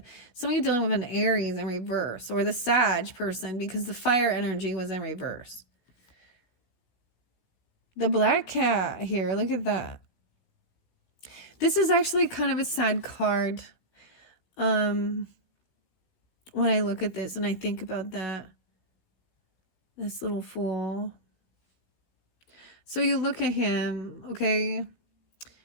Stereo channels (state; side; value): late; right; 16 ms